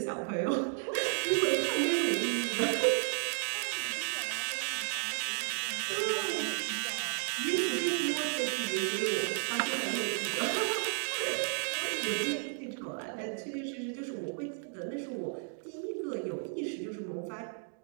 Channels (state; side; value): silent; left; 56 dB below the other